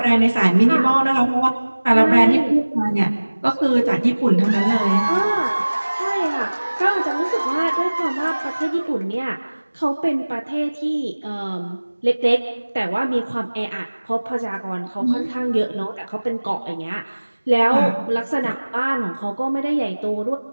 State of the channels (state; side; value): inverted; both; correlation -1.00